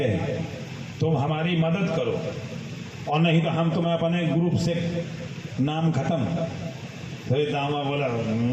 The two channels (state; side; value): identical; both; correlation 1.00